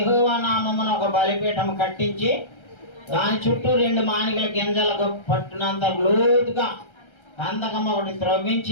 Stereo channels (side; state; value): right; late; 1.3 ms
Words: నామమున ఒక బలిపీఠం కట్టించి దాని చుట్టూ 2 మానికల గింజలకు పట్టునంత లోతుగా కందకం ఒకటి